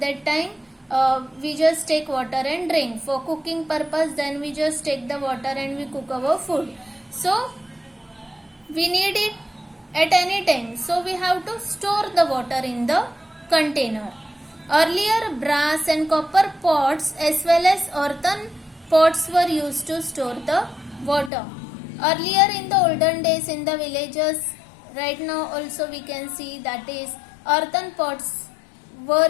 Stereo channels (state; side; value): drops out; right; at 21.3 s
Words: time, we just take water and drink. For cooking purpose, then we just take the water and we cook our food. So we need it at any time, so we have to store the water in the container. Earlier brass and copper pots as well as earthen pots were used to store the water. Earlier in the olden days in the villages, right now also we can see that is earthen pots were